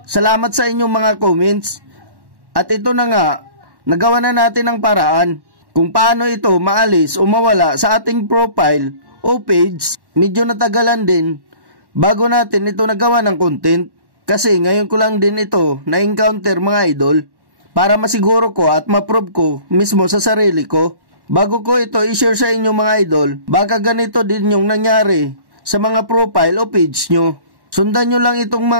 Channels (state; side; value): late; left; 1.1 ms